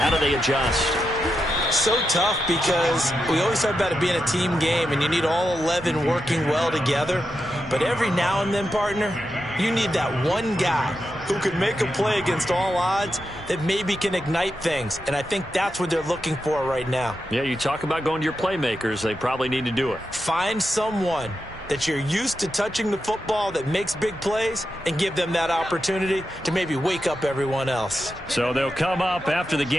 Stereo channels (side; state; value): both; normal; correlation 0.87